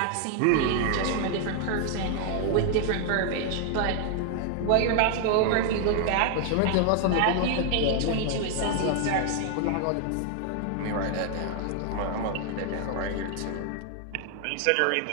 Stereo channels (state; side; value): different; both; correlation 0.00